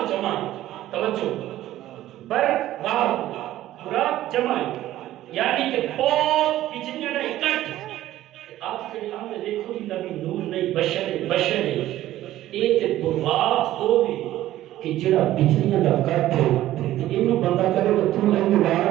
جمع توجہ بر واہ براق جمع یعنی کہ بہت بجلیاں دا اکٹھ آپ جڑے آنے دیکھو کہ نبی نور نہیں بشر اے تے براق ہو بھی کہ جڑا بجلیاں دا اکٹھ تے اینو بندہ کرے تو تو اینو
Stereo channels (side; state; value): left; quieter; 14.2 dB